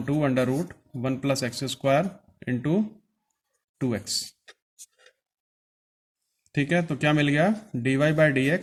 under root 1 plus x square into 2x। ठीक है, तो क्या मिल गया, dy by D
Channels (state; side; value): identical; both; correlation 1.00